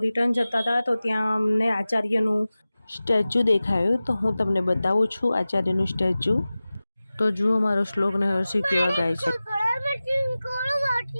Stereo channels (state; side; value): inverted; both; correlation -0.97